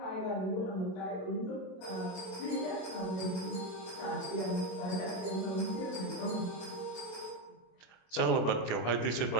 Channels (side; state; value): right; late; 26 ms